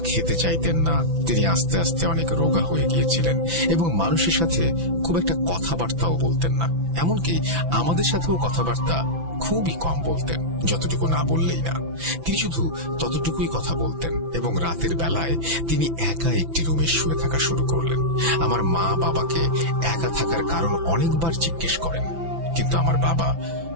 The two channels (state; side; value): late; left; 6.0 ms